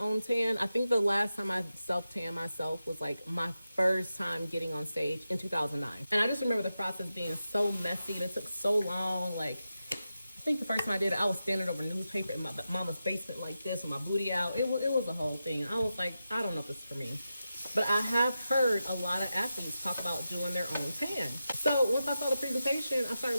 tan. I think the last time I self-tan myself was like my first time getting on stage in 2009. And I just remember the process being so messy. It took so long. Like, I think the first time I did it, I was standing over newspaper in my mama's basement like this with my booty out. It was a whole thing. I was like, I don't know if this is for me. But I have heard a lot of athletes talk about doing their own tan. So once I saw the presentation, I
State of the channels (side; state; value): both; inverted; correlation -0.90